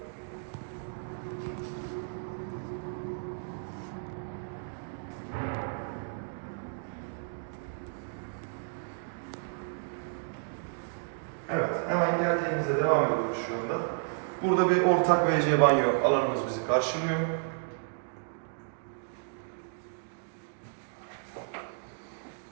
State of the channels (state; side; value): silent; left; digital silence